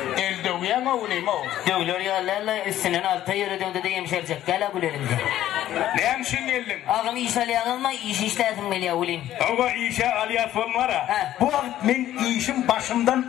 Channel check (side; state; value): right; quieter; 12.8 dB